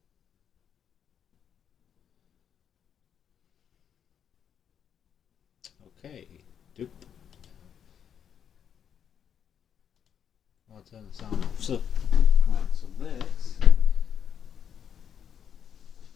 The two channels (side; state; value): right; quieter; 8.3 dB